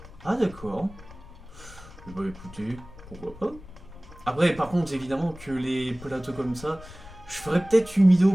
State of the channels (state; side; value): noise; left; rumble, 18 dB below the sound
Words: Ah, d'accord. Bah écoutez, pourquoi pas. Après, par contre, évidemment que les plateaux comme ça, je ferai peut-être une vidéo